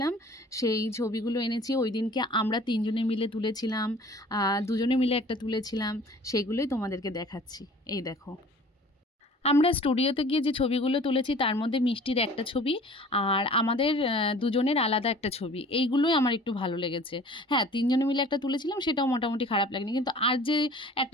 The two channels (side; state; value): both; normal; correlation 0.47